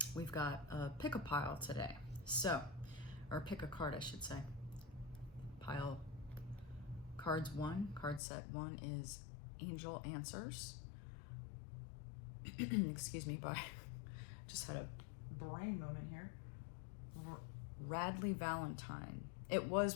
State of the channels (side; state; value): right; drops out; at 8.2 s